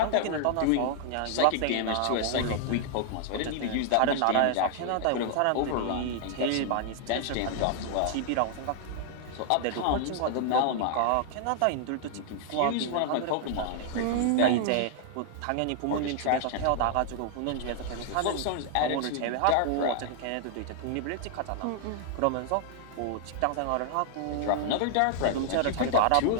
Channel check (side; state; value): both; different; correlation 0.00